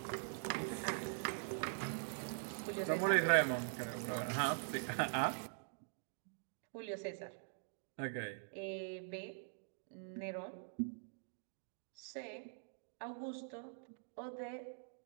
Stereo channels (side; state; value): left; silent; digital silence